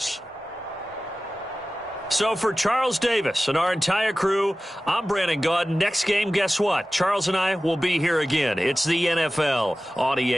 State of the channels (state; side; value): normal; both; correlation 0.96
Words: So for Charles Davis and our entire crew, I'm Brandon Gaudin. Next game, guess what? Charles and I will be here again. It's the NFL on